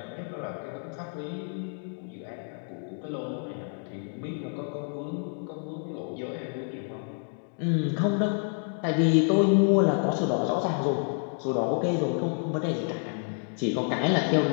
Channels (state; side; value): silent; right; 59 dB below the other